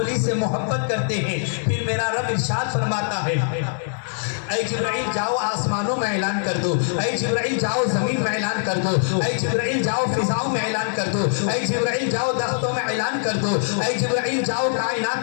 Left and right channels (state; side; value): silent; right; digital silence